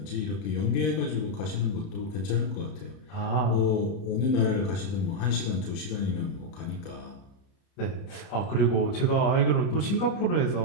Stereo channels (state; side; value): late; right; 30 ms